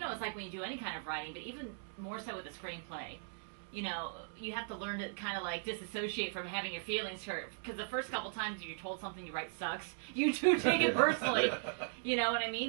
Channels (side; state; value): left; silent; digital silence